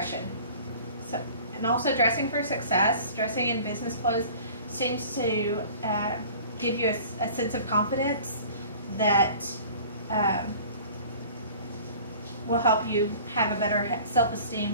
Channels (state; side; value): inverted; both; correlation -0.45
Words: And also dressing for success, dressing in business clothes seems to give you a sense of confidence that will help you have a better